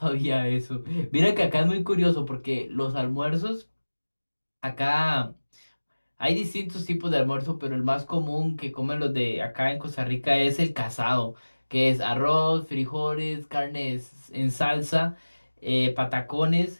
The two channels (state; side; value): inverted; both; correlation -1.00